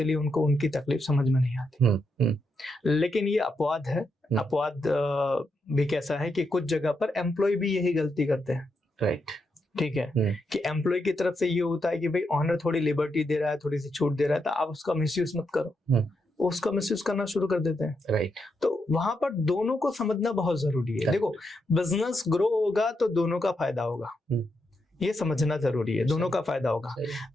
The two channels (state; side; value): normal; both; correlation 0.82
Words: उनको उनकी तकलीफ समझ में नहीं आती। लेकिन ये अपवाद है। अपवाद भी कैसा है कि कुछ जगह पर एम्प्लॉय भी यही गलती करते हैं। राइट, ठीक है, कि एम्प्लॉय की तरफ से ये होता है कि भाई ऑनर थोड़ी लिबर्टी दे रहा है, थोड़ी सी छूट दे रहा है, तो आप उसका मिसयूज मत करो। उसका मिसयूज करना शुरू कर देते हैं। राइट, तो वहां पर दोनों को समझना बहुत जरूरी है। देखो, बिजनेस ग्रो होगा तो दोनों का फायदा होगा, ये समझना जरूरी है, दोनों का फायदा होगा।